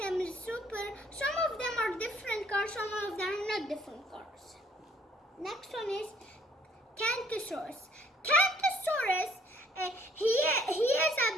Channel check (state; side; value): normal; both; correlation 0.61